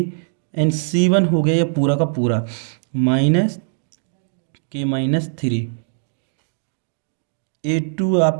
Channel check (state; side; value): silent; left; digital silence